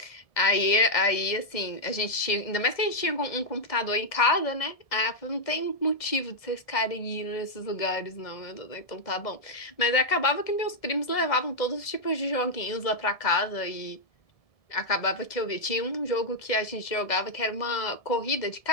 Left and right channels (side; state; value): right; late; 1.7 ms